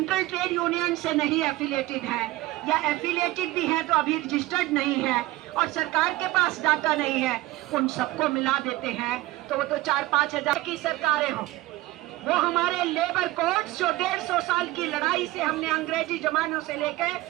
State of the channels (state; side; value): quieter; left; 18.4 dB